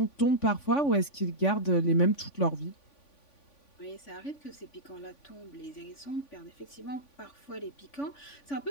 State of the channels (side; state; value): right; late; 3.5 ms